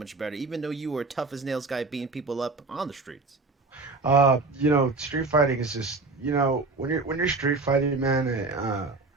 better, even though you were a tough as nails guy beating people up on the streets. Street fighting is just, when you're street fighting, man,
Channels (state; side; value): quieter; left; 3.7 dB